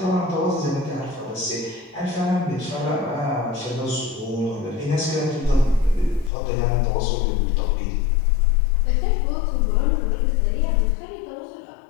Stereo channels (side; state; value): right; drops out; at 6.3 s